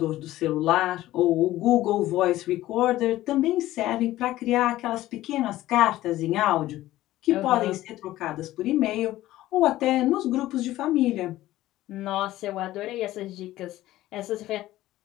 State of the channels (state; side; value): quieter; right; 15.5 dB